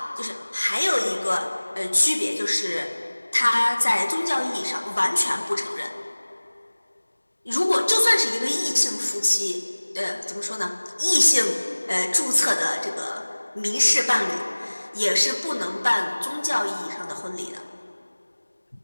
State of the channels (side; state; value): both; inverted; correlation -1.00